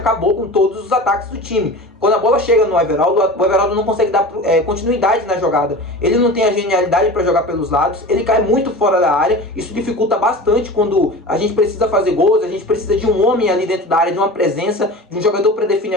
com todos os ataques do time. Quando a bola chega no Everaldo, o Everaldo não consegue dar continuidade na jogada. Ele não tem a genialidade para jogar pelos lados, ele cai muito fora da área, isso dificulta bastante quando a gente precisa fazer gols, a gente precisa de um homem ali dentro da área, de uma presença, de um jogador para definir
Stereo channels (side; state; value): both; normal; correlation 0.34